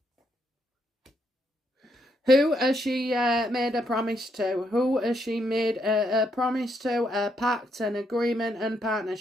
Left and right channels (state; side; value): normal; both; correlation 0.76